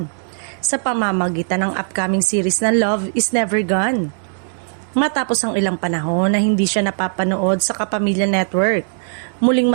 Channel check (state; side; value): silent; left; digital silence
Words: sa pamamagitan ng upcoming series na Love is Never Gone. Matapos ang ilang panahon na hindi siya napapanood sa Kapamilya Network, muling